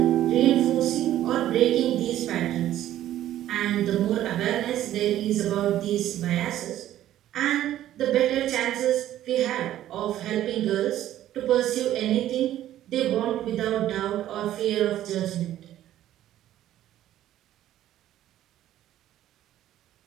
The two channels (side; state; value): left; quieter; 12.8 dB